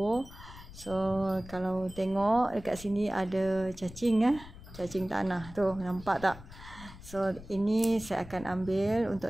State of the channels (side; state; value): left; noise; rumble, 16 dB below the sound